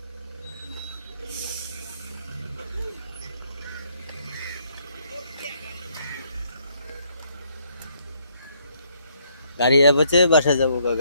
গাড়ি বসে বাসা যাবো,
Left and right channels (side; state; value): both; inverted; correlation -0.69